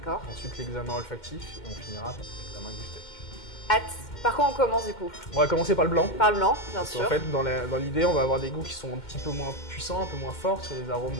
ensuite l'examen olfactif, et on finira par l'examen gustatif. Hâte. Par quoi on commence du coup? On va commencer par le blanc. Par le blanc, bien Parce sûr. qu'en fait, dans l'idée, on va avoir des goûts qui sont un petit peu moins puissants, un peu moins forts sur les arômes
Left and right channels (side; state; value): right; late; 2.1 ms